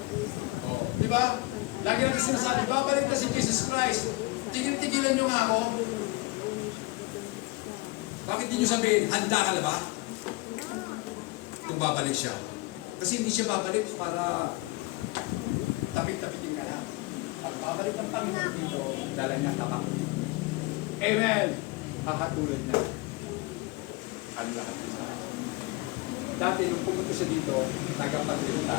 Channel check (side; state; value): right; quieter; 23.4 dB